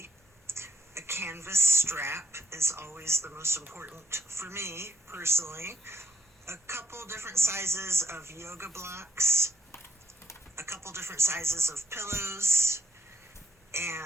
A canvas strap is always the most important for me, personally. A couple different sizes of yoga blocks, a couple different sizes of pillows,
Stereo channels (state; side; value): normal; both; correlation 0.72